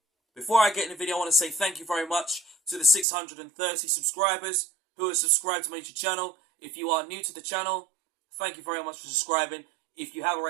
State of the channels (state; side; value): drops out; left; at 3.1 s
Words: Before I get in the video, I want to say thank you very much to the 630 subscribers who have subscribed to my YouTube channel. If you are new to the channel, thank you very much for subscribing. If you have